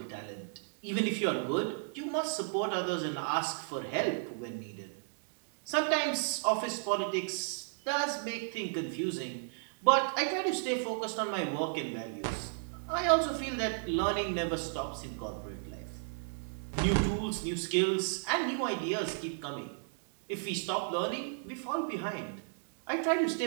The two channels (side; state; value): left; silent; digital silence